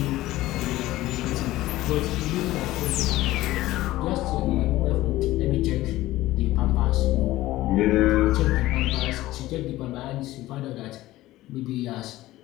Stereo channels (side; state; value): right; quieter; 16.6 dB